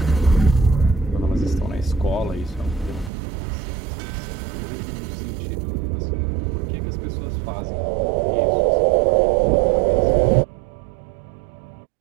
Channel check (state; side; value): drops out; left; at 3.1 s